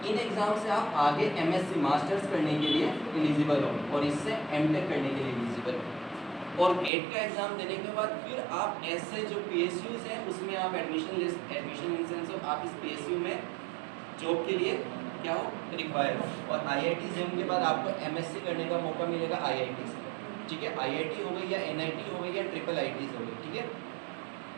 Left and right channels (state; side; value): drops out; left; at 6.9 s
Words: इन एग्ज़ाम से आप आगे एमएससी मास्टर्स करने के लिए एलिजिबल हो और इससे एमटेक करने के लिए एलिजिबल हो। और गेट का एग्ज़ाम देने के बाद फिर आप ऐसे जो पीएसयूज़ हैं उसमें आप एडमिशन इन सेंस ऑफ आप इस पीएसयू में जॉब के लिए क्या हो, रिक्वायर हो। और आईआईटी जेम के बाद आपको एमएससी करने का मौका मिलेगा आईआईटी से, ठीक है। आईआईटी हो गई या एनआईटी हो गई या ट्रिपल आईटीज़ हो गई, ठीक है।